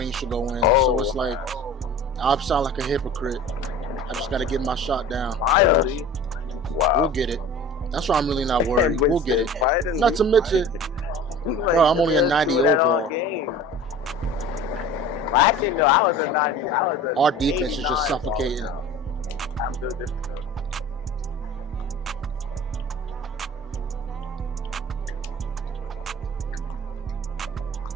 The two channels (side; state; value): both; normal; correlation 0.40